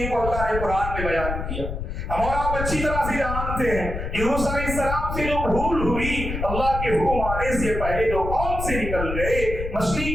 کو اللہ نے قرآن میں بیان کیا. ہم اور آپ اچھی طرح سے جانتے ہیں یونس علیہ السلام سے جو بھول ہوئی، اللہ کے حکم آنے سے پہلے جو قوم سے نکل گئے،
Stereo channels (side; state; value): left; noise; rumble, 5 dB below the sound